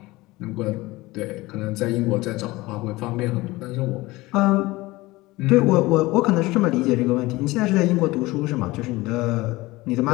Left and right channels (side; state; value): right; quieter; 20.3 dB